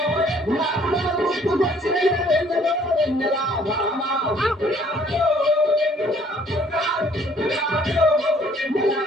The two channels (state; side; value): normal; both; correlation 0.60